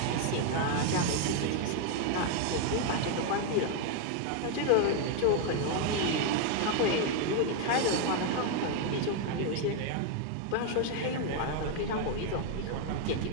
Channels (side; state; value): both; different; correlation 0.01